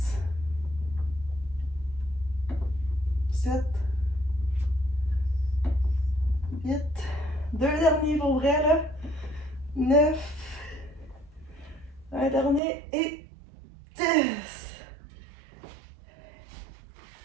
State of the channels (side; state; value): left; drops out; at 12.6 s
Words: 7, 8, 2 derniers pour vrai là, 9, un dernier et 10.